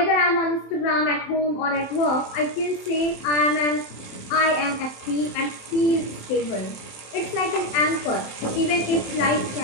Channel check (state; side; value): late; right; 27 ms